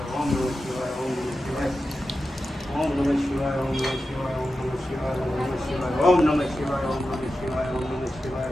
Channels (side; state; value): both; normal; correlation 0.91